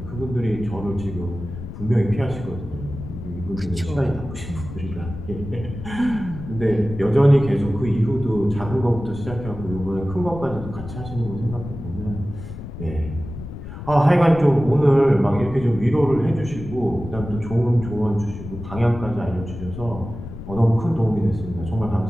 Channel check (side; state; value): left; noise; rumble, 10 dB below the sound